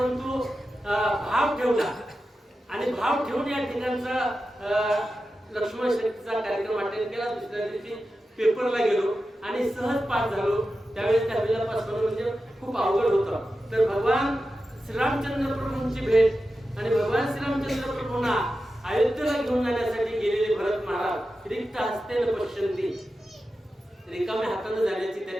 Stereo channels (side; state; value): both; normal; correlation 0.92